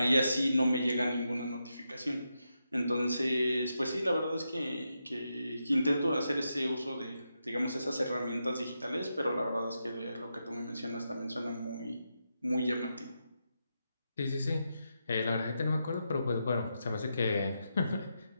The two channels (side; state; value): both; inverted; correlation -0.85